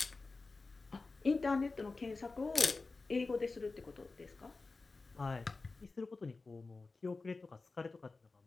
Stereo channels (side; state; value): right; quieter; 3.8 dB